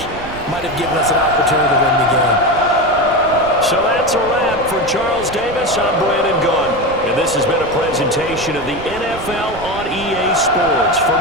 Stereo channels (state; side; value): noise; right; rumble, 14 dB below the sound